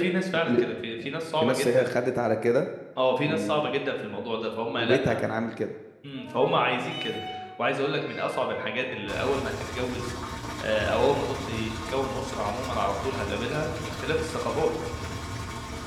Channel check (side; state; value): both; identical; correlation 1.00